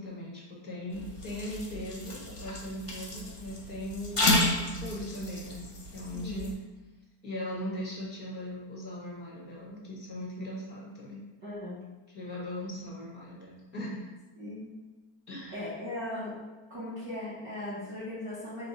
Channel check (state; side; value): late; left; 4.4 ms